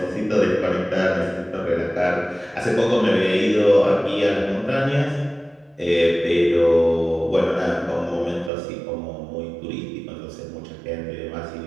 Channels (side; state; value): left; drops out; at 8.5 s